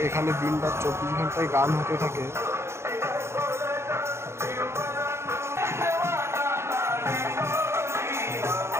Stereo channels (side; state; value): left; late; 0.13 ms